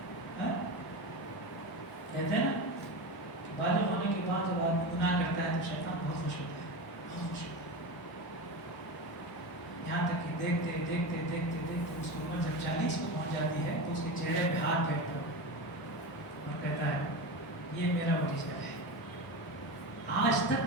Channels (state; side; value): normal; both; correlation 0.23